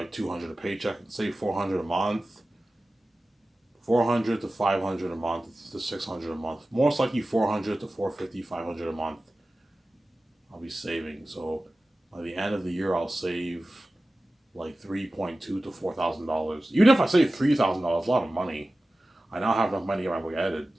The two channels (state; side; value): normal; both; correlation 0.95